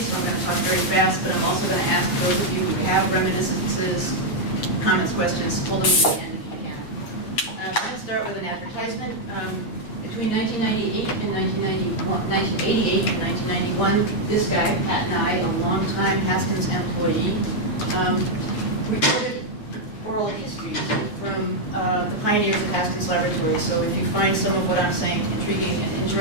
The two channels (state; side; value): late; right; 9.2 ms